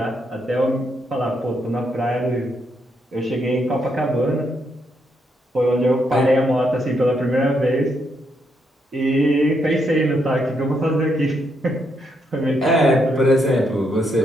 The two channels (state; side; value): normal; both; correlation 0.78